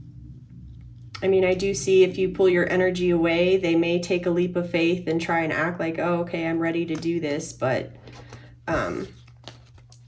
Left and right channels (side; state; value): both; identical; correlation 1.00